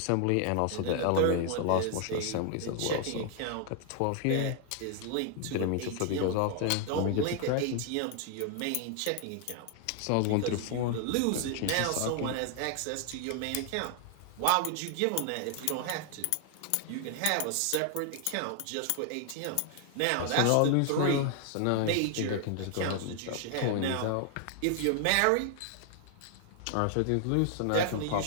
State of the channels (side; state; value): both; different; correlation 0.00